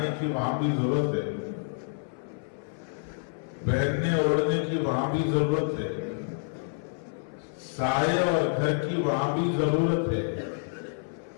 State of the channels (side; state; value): right; silent; 59 dB below the other